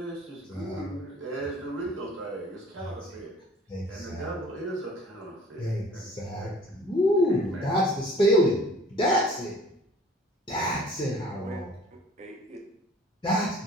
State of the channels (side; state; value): both; normal; correlation 0.49